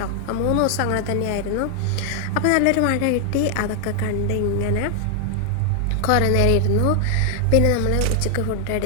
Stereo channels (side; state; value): both; different; correlation 0.00